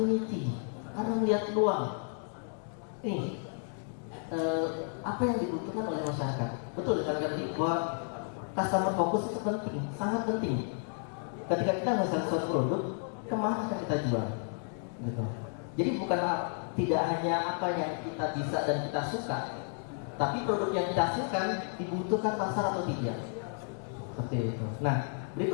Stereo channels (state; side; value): silent; right; 56 dB below the other